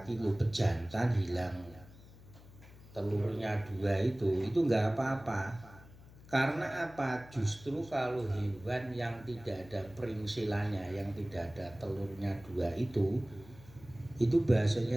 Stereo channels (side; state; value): left; noise; hum, 20 dB below the sound